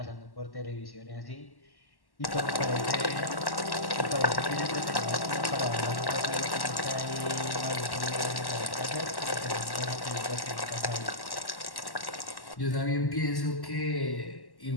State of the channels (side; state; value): right; late; 1.1 ms